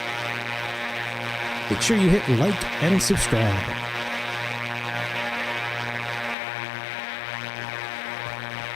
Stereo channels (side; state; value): right; drops out; at 6.4 s